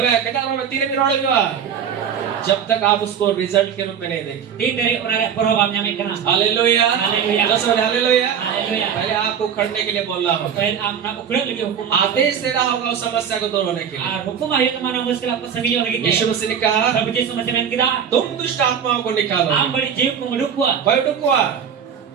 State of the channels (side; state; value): left; quieter; 7.9 dB